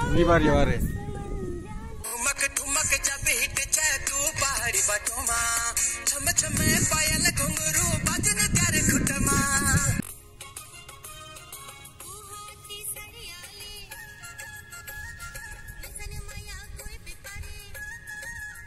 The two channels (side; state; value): both; identical; correlation 1.00